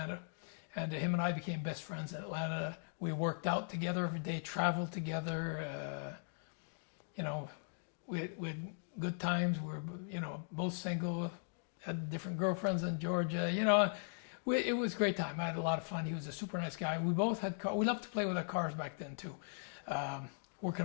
And him and I became best friends in Atlanta. We worked out together every day, traveled together. We had good times. We were, both single, had different girlfriends in Georgia. It was a great time. I had a lot of fun. He was a super nice guy. We both had cars. We loved to play with our cars back then too. Working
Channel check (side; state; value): right; silent; digital silence